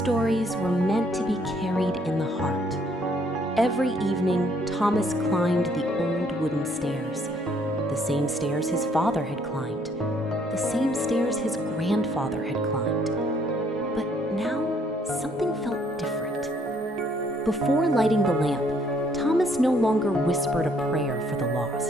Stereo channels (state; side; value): normal; both; correlation 0.66